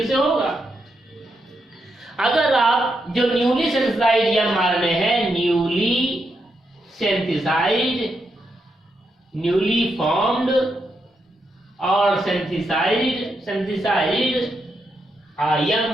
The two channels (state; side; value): normal; both; correlation 0.82